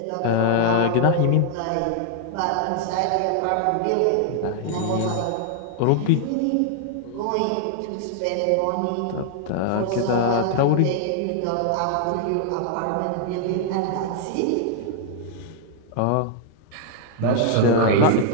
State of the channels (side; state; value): both; different; correlation -0.01